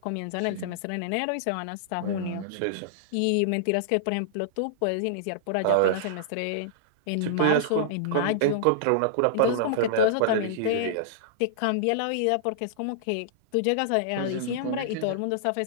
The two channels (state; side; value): different; both; correlation -0.02